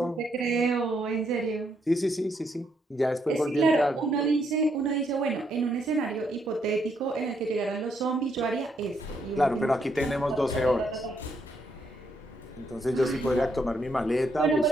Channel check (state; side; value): normal; both; correlation 0.75